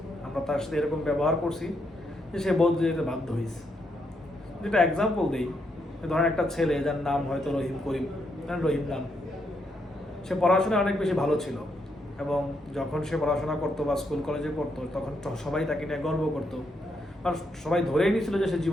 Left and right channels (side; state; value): both; normal; correlation 0.78